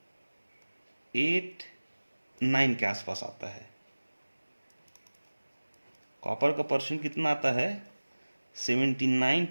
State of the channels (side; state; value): both; inverted; correlation -1.00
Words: के आसपास आता है। कॉपर का परसेंट कितना आता है,